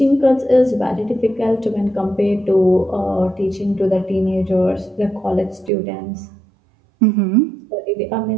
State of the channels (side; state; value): left; drops out; at 5.7 s